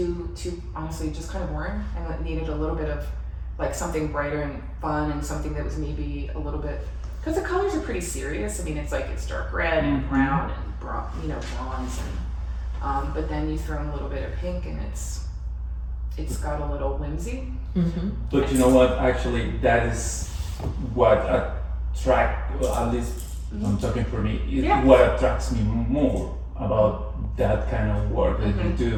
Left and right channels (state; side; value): identical; both; correlation 1.00